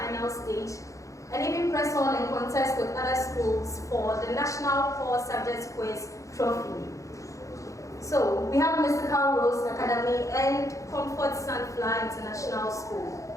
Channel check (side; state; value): right; late; 0.15 ms